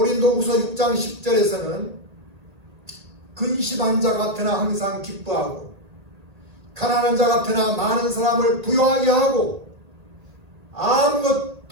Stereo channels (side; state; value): left; late; 1.8 ms